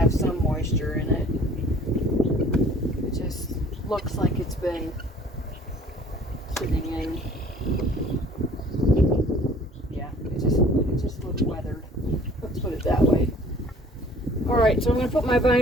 some moisture in it. It just looks like it's been sitting in. Yeah, it just looks weathered. Let's put it that way. Alright, so I'm going to put my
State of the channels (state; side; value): normal; both; correlation 0.53